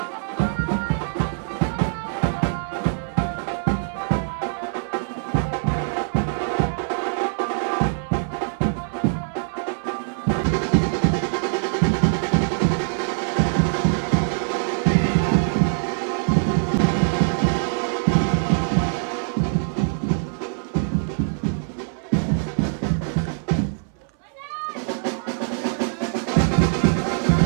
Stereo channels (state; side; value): silent; left; 62 dB below the other